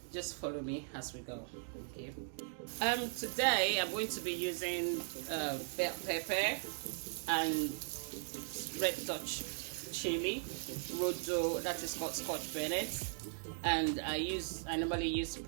Just follow me as we go. Okay. Today I'm going to be using bell pepper and red Dutch chili, rodo, that is called Scotch Bonnet, and I normally use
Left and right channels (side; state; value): left; silent; digital silence